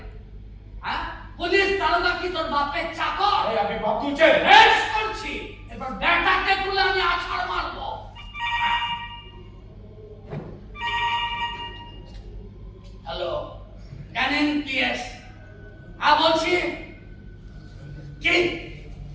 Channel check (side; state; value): both; identical; correlation 1.00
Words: হ্যাঁ, পুলিশ দারোগা কি তোর বাপের চাকর? আপনি বাপ তুলছেন? বেশ করছি। এবার ব্যাটাকে তুলে আমি আছাড় মারবো। Hello, Canning PS. হ্যাঁ বলছি। কি?